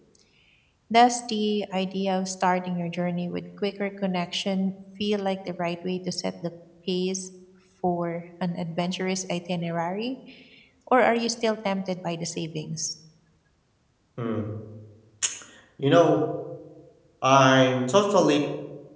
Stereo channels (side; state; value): both; identical; correlation 1.00